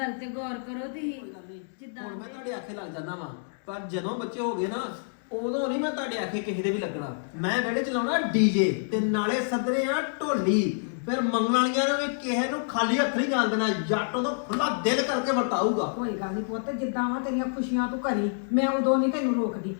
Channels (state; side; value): silent; right; digital silence